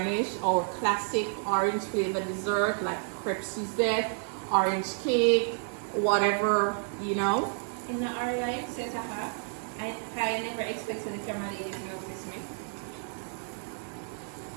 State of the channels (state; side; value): silent; left; 58 dB below the other